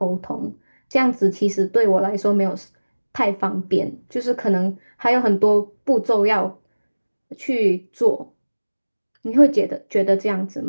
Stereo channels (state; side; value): inverted; both; correlation -1.00